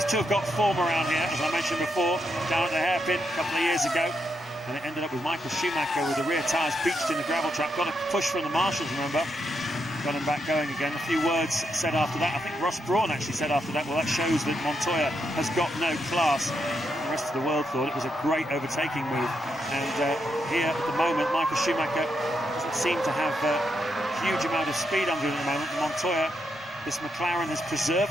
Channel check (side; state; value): both; normal; correlation 0.81